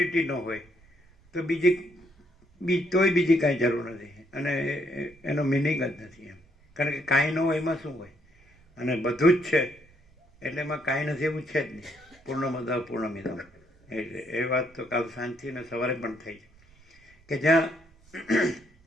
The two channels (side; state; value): right; noise; rumble, 29 dB below the sound